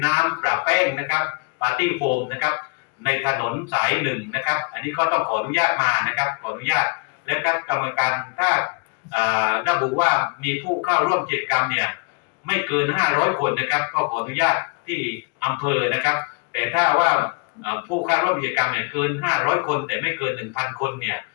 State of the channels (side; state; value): right; quieter; 33.3 dB